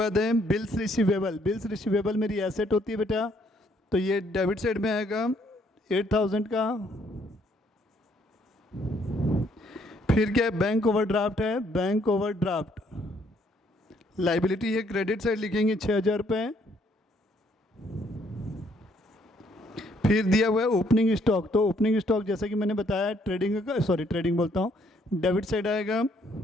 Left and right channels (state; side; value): normal; both; correlation 0.67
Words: है बिल्स रिसीवेबल। बिल्स रिसीवेबल मेरी एसेट होती है बेटा, तो ये डेबिट साइड में आएगा 8,000 का। फिर क्या है? बैंक ओवरड्राफ्ट है। बैंक ओवरड्राफ्ट लाइबिलिटी है, क्रेडिट साइड लिखेंगे 6,000 रुपये। फिर दिया हुआ है ओपनिंग स्टॉक। तो ओपनिंग स्टॉक जैसा कि मैंने बताया ट्रेडिंग बोलता हूँ, डेबिट साइड आएगा